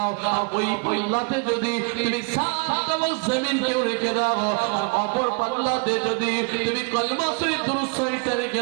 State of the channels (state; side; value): quieter; left; 33.5 dB